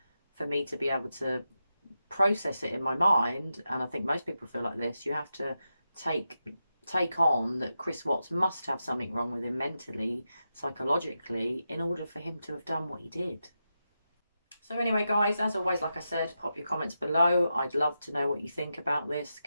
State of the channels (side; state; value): both; inverted; correlation -0.88